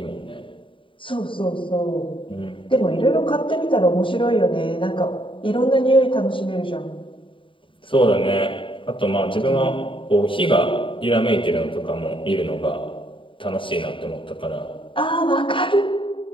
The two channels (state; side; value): late; right; 0.25 ms